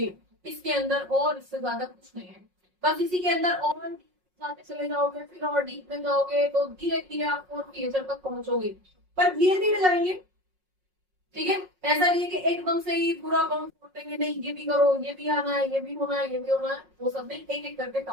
इसके अंदर और इससे ज्यादा कुछ नहीं है, बस इसी के अंदर और जाते चले जाओगे, फिर और डीप में जाओगे तो धीरे धीरे आप और टीचर तक पहुंचोगे, पर धीरे धीरे जाएंगे, ठीक है। ऐसा नहीं है कि एकदम से ही पूरा अकाउंट छोड़ देंगे, नहीं ये भी करो, ये भी आना है, ये भी होना है, ये भी होना है, वो सब नहीं, एक एक करके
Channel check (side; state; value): left; late; 5.5 ms